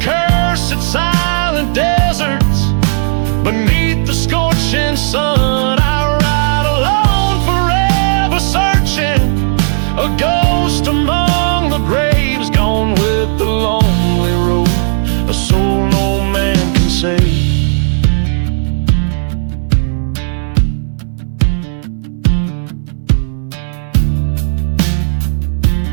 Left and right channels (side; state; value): left; silent; digital silence